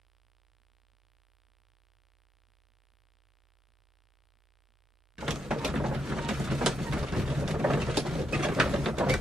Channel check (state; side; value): normal; both; correlation 0.81